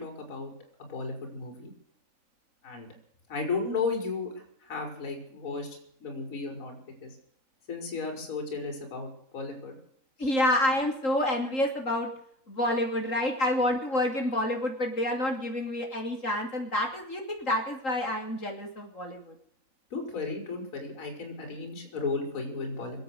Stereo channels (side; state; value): right; late; 3.8 ms